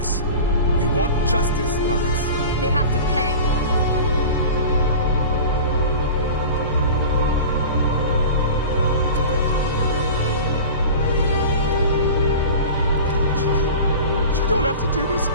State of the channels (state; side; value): inverted; both; correlation -0.35